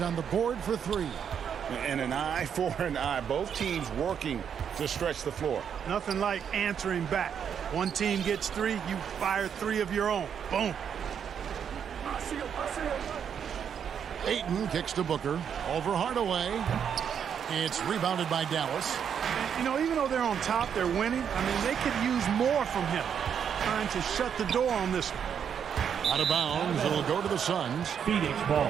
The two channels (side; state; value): left; quieter; 7.9 dB